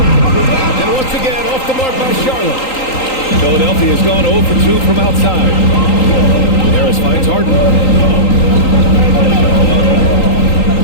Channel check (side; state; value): right; late; 3.8 ms